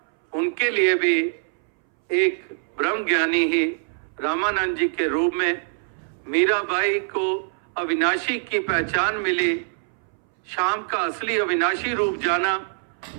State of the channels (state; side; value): silent; left; 62 dB below the other